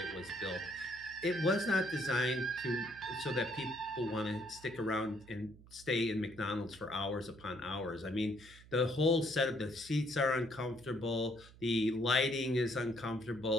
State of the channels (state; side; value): noise; right; hum, 21 dB below the sound